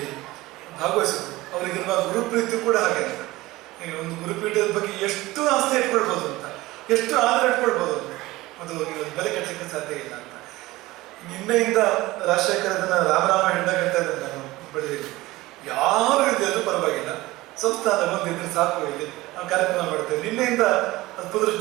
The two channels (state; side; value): quieter; left; 19.0 dB